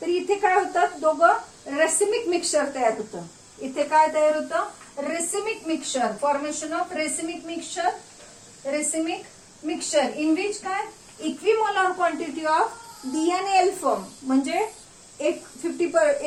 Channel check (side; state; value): both; identical; correlation 1.00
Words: इथे काय होतं, दोघं रेसिमिक मिक्सचर तयार होतं. इथे काय तयार होतं, racemic mixture. Formation of racemic mixture. Racemic mixture in which काय इक्विमोलार क्वांटिटी ऑफ डी आणि एल फॉर्म, म्हणजे एक